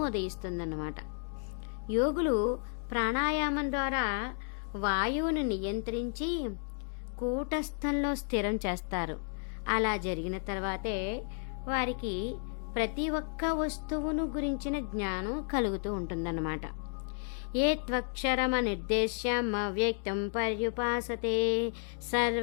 ఉదయిస్తుందన్నమాట. యోగులు ప్రాణాయామం ద్వారా వాయువును నియంత్రించి కూటస్థంలో స్థిరం చేస్తారు. అలా జరిగిన తర్వాతే వారికి ప్రతి ఒక్క వస్తువును గురించిన జ్ఞానం కలుగుతూ ఉంటుందన్నమాట. ఏ త్వక్షరమనిర్దేశ్యం అవ్యక్తం పర్యుపాసతే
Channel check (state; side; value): silent; right; 56 dB below the other